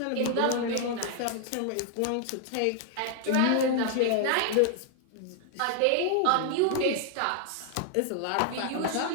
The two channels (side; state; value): both; different; correlation 0.00